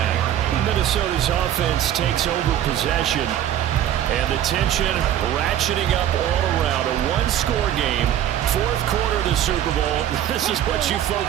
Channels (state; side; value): quieter; left; 11.1 dB